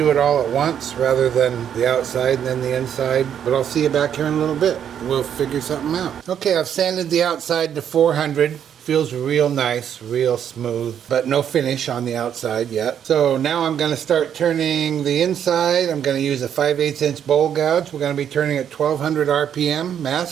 it all at once rather than the outside and then the inside. But I'll see you back here in a little bit. We'll figure something out. Okay, I've sanded the outside to 400. Feels real nice, real smooth, but no finish on the outside yet. So now I'm going to start turning the inside. I'm going to use a 5/8 inch bowl gouge. We're going to be turning at 1200 RPM,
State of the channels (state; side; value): quieter; left; 9.0 dB